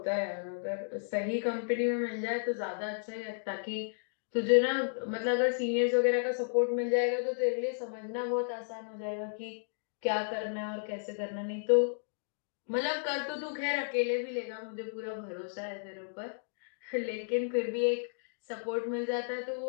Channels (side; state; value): right; silent; digital silence